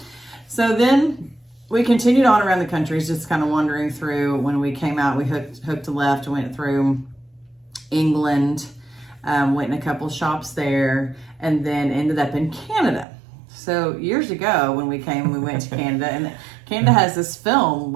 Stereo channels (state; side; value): drops out; left; at 13.1 s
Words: So then... we continued on around the countries, just kind of wandering through. When we came out, we hooked a left, went through England, went in a couple shops there, and then ended up in Canada. So years ago, when we came, we went to Canada, and Canada has this film